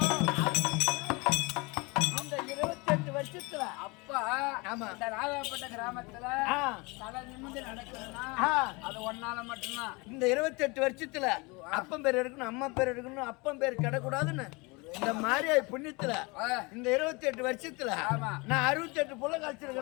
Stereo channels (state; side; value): quieter; right; 26.9 dB